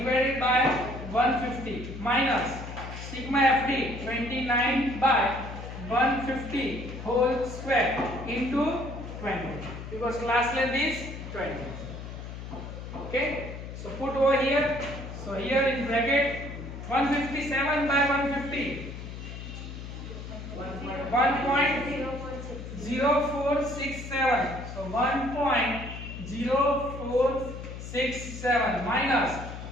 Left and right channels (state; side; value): noise; left; hum, 10 dB below the sound